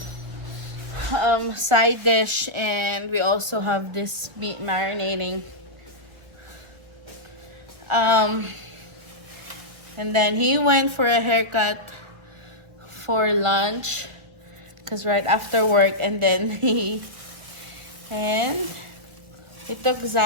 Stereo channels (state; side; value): late; left; 1.2 ms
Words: side dish, and we also have this meat marinating. And then he went for a haircut for lunch because right after work, and then he took